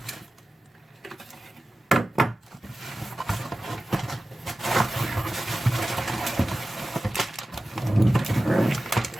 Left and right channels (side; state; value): both; normal; correlation 0.95